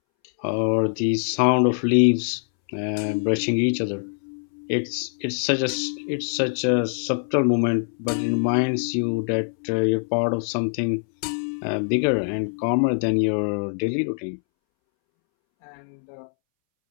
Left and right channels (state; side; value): silent; right; 63 dB below the other